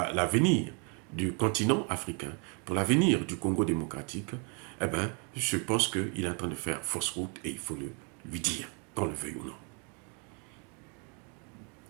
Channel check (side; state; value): left; quieter; 35.8 dB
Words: du continent africain, pour l'avenir du Congo démocratique, eh ben, je pense qu'il est en train de faire fausse route et il faut lui dire, qu'on le veuille ou non.